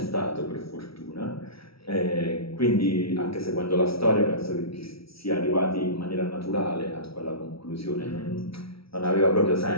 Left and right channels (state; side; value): late; right; 0.75 ms